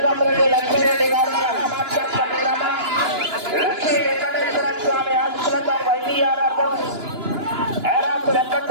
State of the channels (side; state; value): left; late; 2.9 ms